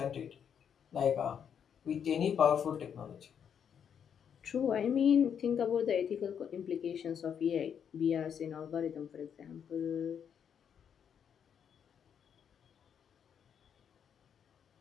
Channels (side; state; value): right; quieter; 8.0 dB